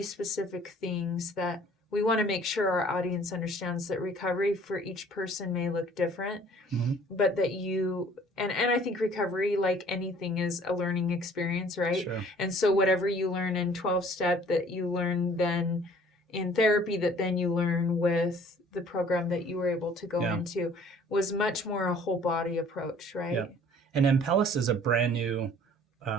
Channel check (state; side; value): normal; both; correlation 0.54